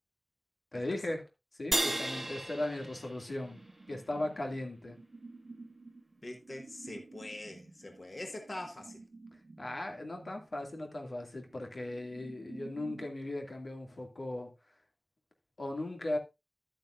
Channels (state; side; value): normal; both; correlation 0.96